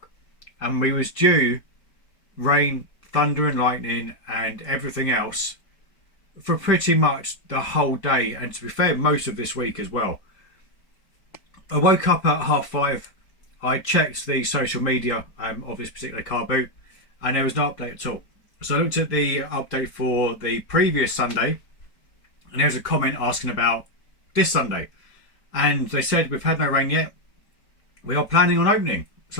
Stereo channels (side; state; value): right; late; 4.5 ms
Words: and we was due rain, thunder and lightning and everything else for pretty much the whole day, and to be fair, most of this week as well. I woke up at 5:30. I checked the social media of this particular car boot, and there was no update at all. So I looked at the update for the previous Sunday, and there was a comment asking about this Sunday, and they said we've had no rain yet, we are planning on opening.